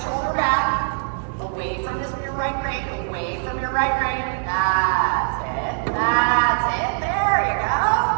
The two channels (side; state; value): left; silent; digital silence